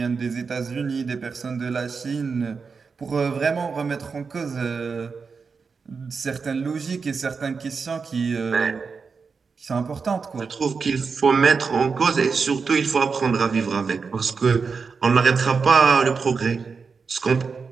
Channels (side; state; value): left; quieter; 5.2 dB